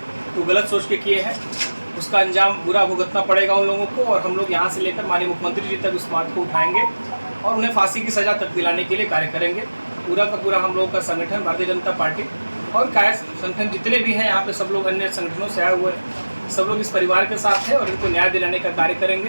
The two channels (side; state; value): both; inverted; correlation -1.00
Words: तो गलत सोच के किए हैं, उसका अंजाम बुरा भुगतना पड़ेगा उन लोगों को। और हम लोग यहाँ से लेकर माननीय मुख्यमंत्री जी तक इस बात को उठाएंगे और उन्हें फांसी की सज़ा तक दिलाने के लिए कार्य करेंगे। पूरा का पूरा हम लोगों का संगठन भारतीय जनता पार्टी और कायस्थ संगठन जितने भी हैं यहाँ पे, सब लोग अन्य संगठनों से आए हुए हैं, सब लोग इस परिवार के साथ हैं और इनको न्याय दिलाने का कार्य